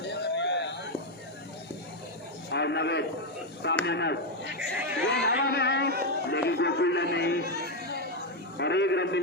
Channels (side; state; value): both; normal; correlation 0.04